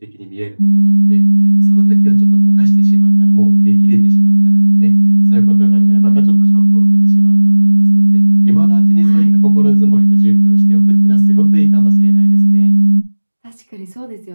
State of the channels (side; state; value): both; inverted; correlation -1.00